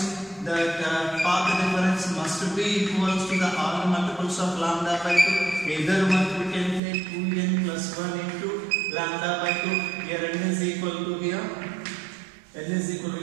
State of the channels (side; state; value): left; drops out; at 6.8 s